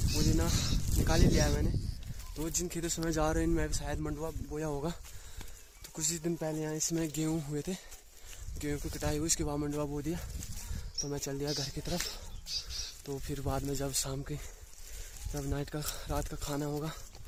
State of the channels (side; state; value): both; identical; correlation 1.00